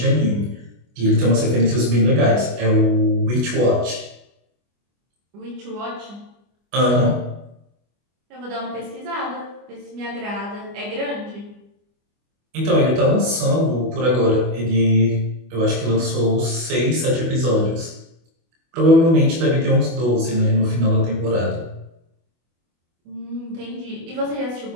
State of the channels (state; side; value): late; left; 24 ms